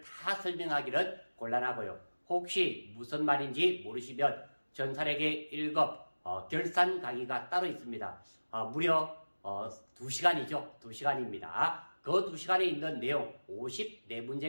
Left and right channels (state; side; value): inverted; both; correlation -1.00